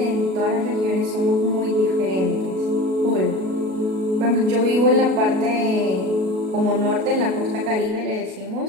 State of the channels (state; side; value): late; left; 37 ms